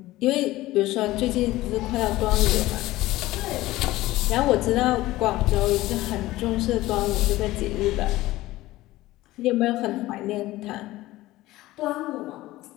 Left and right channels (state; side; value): quieter; right; 17.3 dB